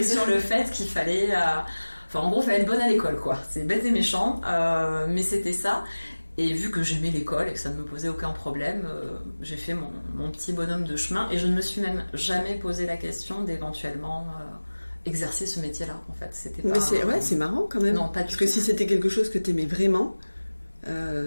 sur le fait qu'il fallait... en gros, il fallait être bonne à l'école, quoi. C'est bête et méchant, mais c'était ça. Et vu que j'aimais l'école et que ça ne me posait aucun problème, j'ai fait mon petit bonhomme de chemin et je ne me suis même jamais posé la question d'éventuellement... exercer ce métier-là, en fait. C'était pas... Mais c'est marrant quand même. Non, pas du Parce tout. que si c'était quelque chose que t'aimais vraiment,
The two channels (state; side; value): inverted; both; correlation -1.00